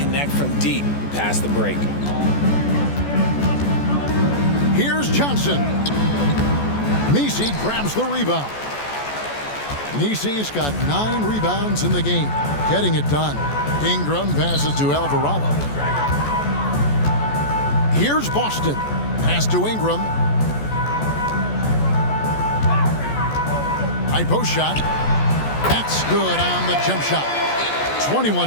from deep past the break. Here's Johnson. Misi grabs the rebound. Misi's got 9 rebounds in the game, getting it done. Ingram passes to Alvarado. Here's Boston. Pass to Ingram. High post shot. That's good on the jump shot.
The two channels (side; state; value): right; late; 14 ms